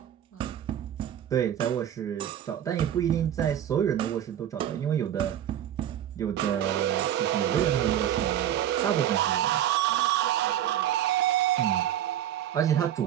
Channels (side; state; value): left; quieter; 10.9 dB